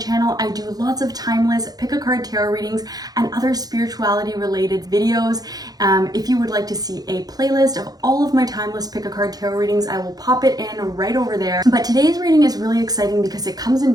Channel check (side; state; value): left; late; 0.19 ms